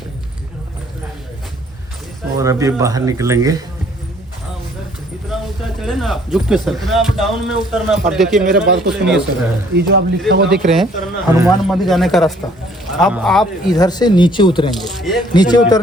और अभी बाहर निकलेंगे। झुक के सर, डाउन में उतरना। अब देखिए मेरे बात को सुनिए सर। ये जो आप लिखा हुआ देख रहे हैं हनुमान मंदिर जाने का रास्ता, अब आप इधर से नीचे उतरेंगे। नीचे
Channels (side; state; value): both; normal; correlation 0.60